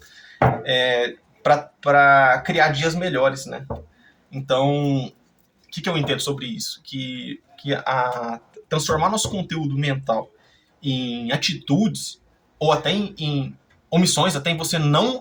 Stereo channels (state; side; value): identical; both; correlation 1.00